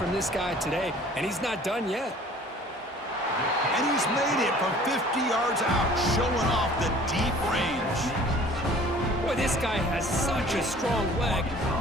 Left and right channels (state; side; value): normal; both; correlation 0.50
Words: this guy today, and he's not done yet. And he's made it from 50 yards out, showing off the deep range. Boy, this guy has such a strong leg.